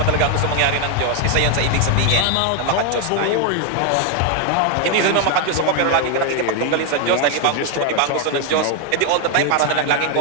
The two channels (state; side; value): different; both; correlation 0.01